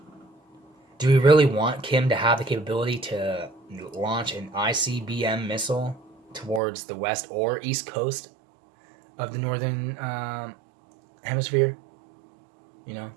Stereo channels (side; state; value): left; drops out; at 6.6 s